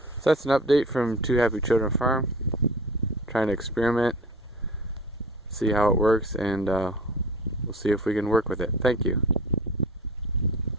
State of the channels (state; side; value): normal; both; correlation 0.40